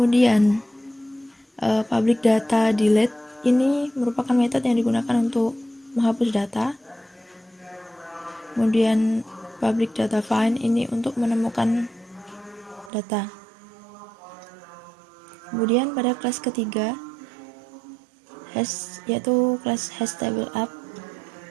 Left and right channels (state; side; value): drops out; left; at 12.9 s